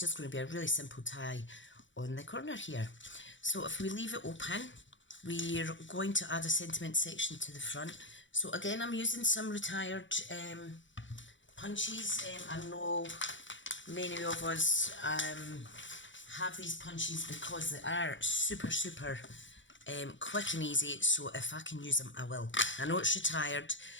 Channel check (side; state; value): right; late; 0.55 ms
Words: going to be a really simple tie on the corner here. So if we leave it open, we're going to add a sentiment section to the front. So again, I'm using some retired punches. I know many of us have these punches because they are super quick and easy, so if I can use them, I will. I know it's retired,